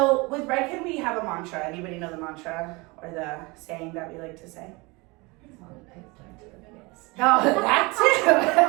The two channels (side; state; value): left; quieter; 25.6 dB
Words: with Redken, we have a mantra. Anybody know the mantra or the saying that we like to say? Oh, that too.